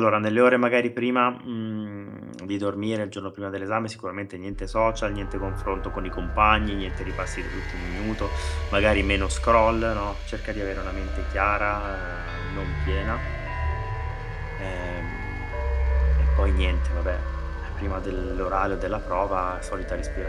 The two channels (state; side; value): identical; both; correlation 1.00